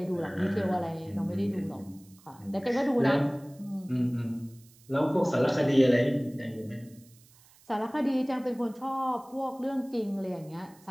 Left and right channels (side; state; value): right; noise; hiss, 27 dB below the sound